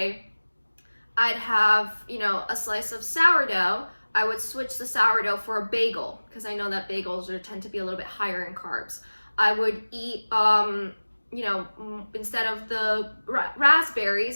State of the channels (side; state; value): both; inverted; correlation -1.00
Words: I'd have, a slice of sourdough, I would switch the sourdough for a bagel, because I know that bagels tend to be a little bit higher in carbs. I would eat, instead of the